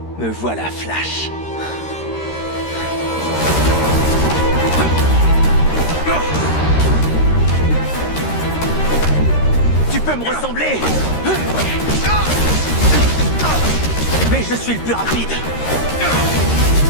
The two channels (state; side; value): late; right; 13 ms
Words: Me voilà, Flash. Tu peux me ressembler, mais je suis le plus rapide.